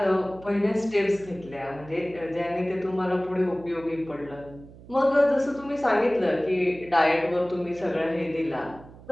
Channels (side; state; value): right; noise; hum, 20 dB below the sound